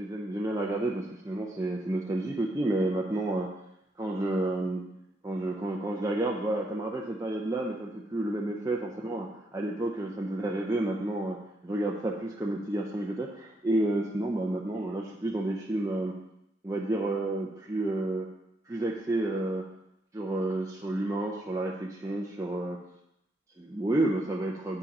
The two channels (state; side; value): normal; both; correlation 0.76